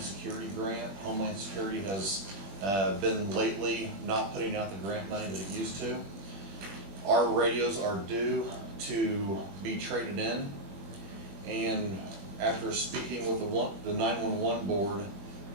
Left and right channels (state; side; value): late; left; 20 ms